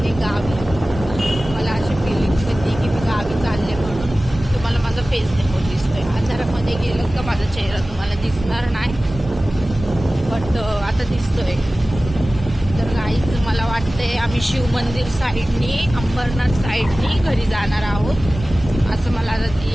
गावी. मला अशी फिलिंग्स येते की मी गावी चालले म्हणून. तुम्हाला माझा फेस देखो दिसतोय. अंधारामध्ये गेलं का माझा चेहरा तुम्हाला दिसणार नाही, बट आता दिसतोय. तर गाईज मला वाटतंय आम्ही शिव मंदिर साईडनी, अंबरनाथ साईडनी घरी जाणार आहोत असं मला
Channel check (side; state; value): both; normal; correlation 0.97